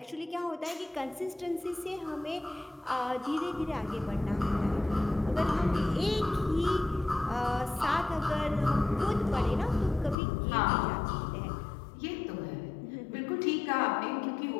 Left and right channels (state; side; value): drops out; right; at 10.2 s